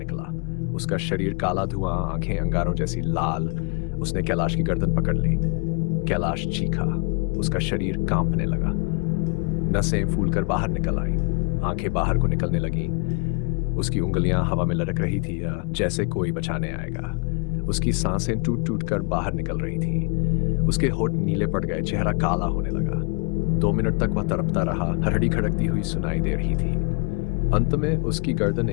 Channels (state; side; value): quieter; right; 33.5 dB